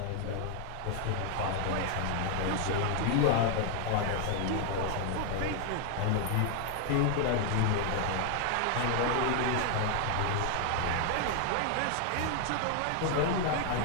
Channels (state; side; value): different; both; correlation 0.00